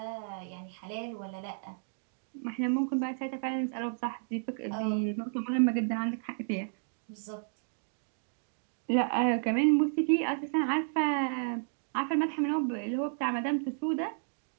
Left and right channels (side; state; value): left; silent; digital silence